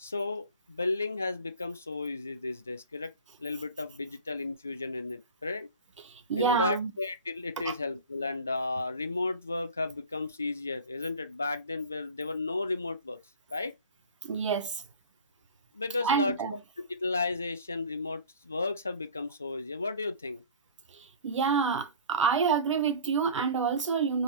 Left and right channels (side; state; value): both; inverted; correlation -0.41